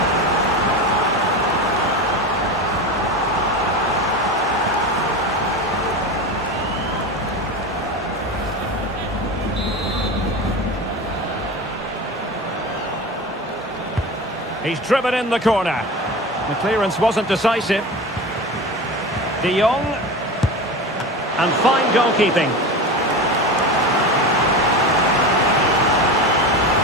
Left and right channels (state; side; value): normal; both; correlation 0.27